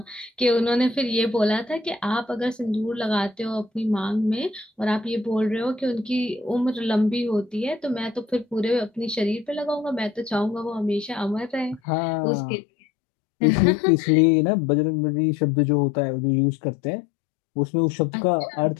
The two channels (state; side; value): drops out; right; at 11.8 s